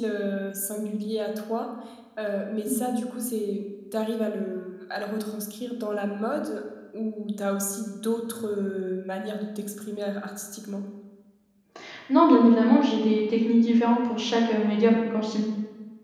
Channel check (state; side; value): identical; both; correlation 1.00